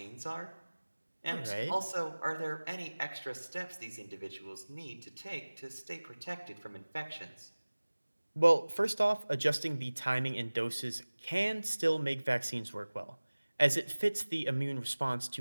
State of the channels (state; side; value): inverted; both; correlation -1.00